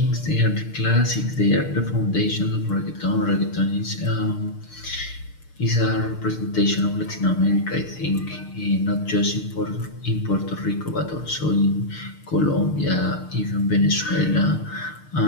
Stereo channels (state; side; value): late; right; 6.6 ms